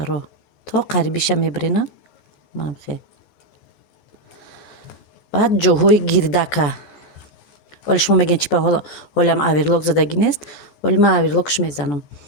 То қарибиша мебарена. Манам хе. Баъд ҷоҳои гирдака. ولی شما میگین چی به حالم اویرلاک زدگی نیست، ولی من اویرلاکش میزنم.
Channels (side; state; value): right; late; 14 ms